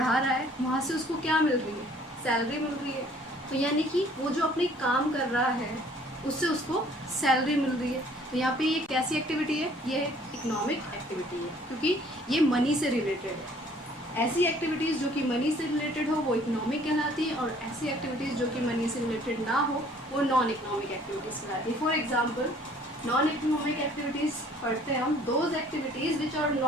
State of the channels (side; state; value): both; normal; correlation 0.56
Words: रहा है, वहाँ से उसको क्या मिल रही है, सैलरी मिल रही है। तो यानी कि वो जो अपनी काम कर रहा है उससे उसको सैलरी मिल रही है। तो यहाँ पे ये कैसी एक्टिविटी है, ये इकोनॉमिक एक्टिविटी है क्योंकि ये मनी से रिलेटेड है। ऐसी एक्टिविटीज़ जो कि मनी से रिलेटेड हो वो इकोनॉमिक कहलाती है और ऐसी एक्टिविटीज़ जो कि मनी से रिलेटेड ना हो वो नॉन इकोनॉमिक एक्टिविटीज़ कहलाती है। For example non economic activities पढ़ते हैं हम, those activities which are